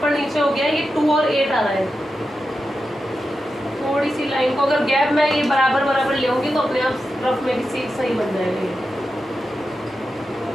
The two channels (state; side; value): normal; both; correlation 0.90